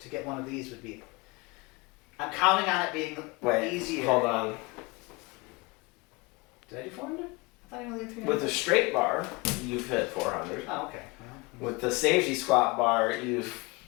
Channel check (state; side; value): quieter; right; 25.5 dB